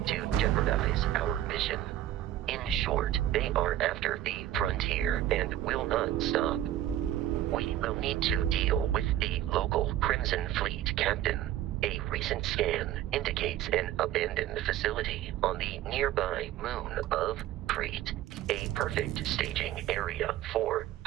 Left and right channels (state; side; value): quieter; left; 12.9 dB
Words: To jeopardize our mission. In short, they are after the frontier and will not stop. We will need to deal with the local Crimson Fleet captain. A recent scan indicates an abandoned facility on the nearby moon of Crete, a perfect staging area for